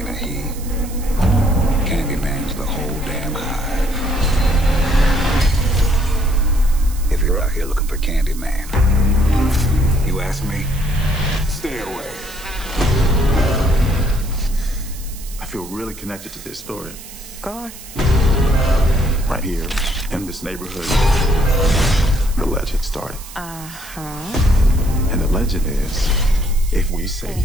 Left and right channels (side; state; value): right; noise; hiss, 16 dB below the sound